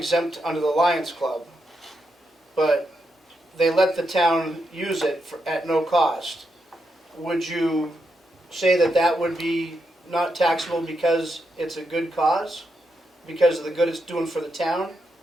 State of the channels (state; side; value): normal; both; correlation 0.83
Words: under the Lions Club, but they let the town use it at no cost. Would you say that would be not taxable because it's a good cause? Because of the good it's doing for the town?